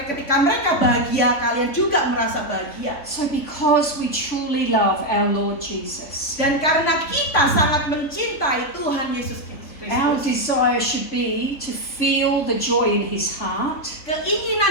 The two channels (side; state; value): right; late; 3.5 ms